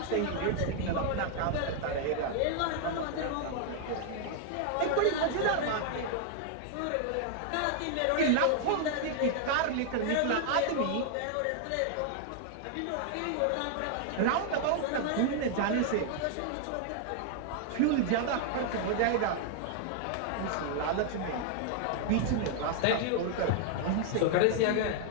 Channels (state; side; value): different; both; correlation 0.00